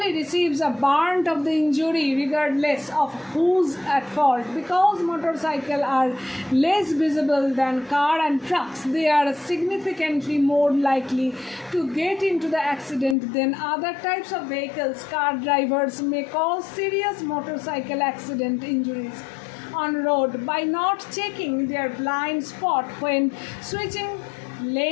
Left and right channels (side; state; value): right; drops out; at 13.2 s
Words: receives a brunt of the injury regardless of who's at fault. Because motorcycles are less visible than car and trucks, they are significantly more likely to get into the accident than other types of vehicles. Car drivers may cause serious motorcycle accident injuries on road by not checking their blind spot when switching